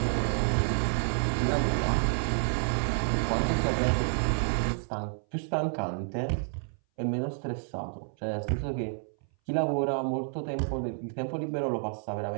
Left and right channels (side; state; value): left; silent; 58 dB below the other